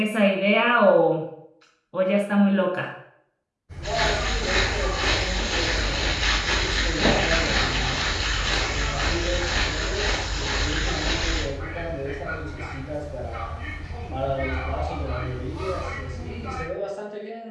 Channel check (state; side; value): identical; both; correlation 1.00